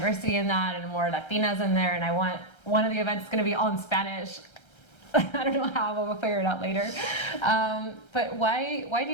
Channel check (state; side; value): late; right; 1.3 ms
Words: in that and more Latinas in there. And I want one of the events going to be all in Spanish. I don't know how, but we'll figure it out later. But why